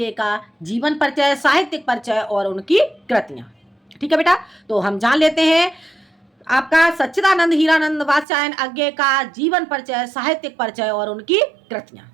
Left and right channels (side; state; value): left; drops out; at 8.2 s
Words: का जीवन परिचय, साहित्यिक परिचय और उनकी कृतियां। ठीक है बेटा, तो हम जान लेते हैं आपका सच्चिदानंद हीरानंद वात्स्यायन अज्ञे का जीवन परिचय, साहित्यिक परिचय और उनकी कृतियां।